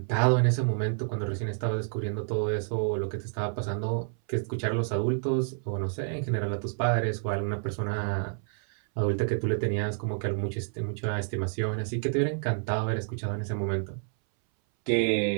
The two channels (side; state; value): left; silent; 59 dB below the other